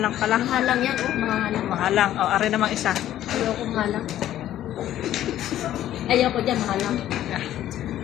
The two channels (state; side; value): quieter; right; 12.5 dB